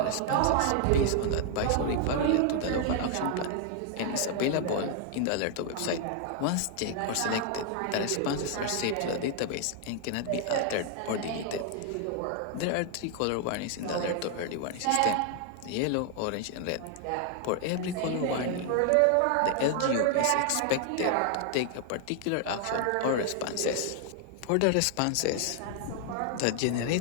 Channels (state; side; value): different; both; correlation 0.00